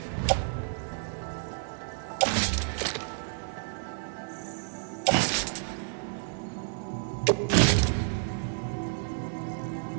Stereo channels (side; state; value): left; silent; digital silence